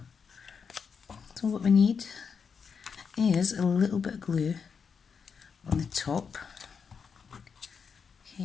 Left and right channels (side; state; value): right; quieter; 6.1 dB